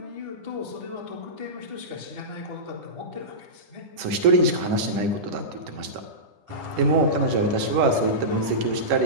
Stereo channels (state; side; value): late; left; 11 ms